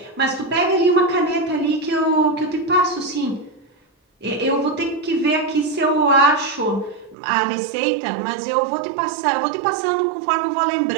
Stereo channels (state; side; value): drops out; left; at 7.2 s